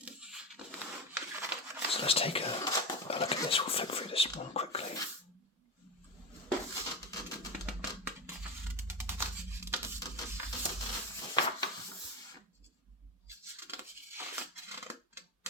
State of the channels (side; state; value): both; normal; correlation 0.19